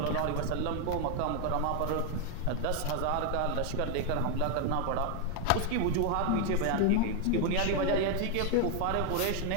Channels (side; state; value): both; different; correlation 0.01